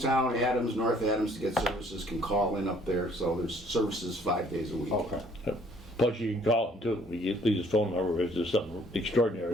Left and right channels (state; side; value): normal; both; correlation 0.60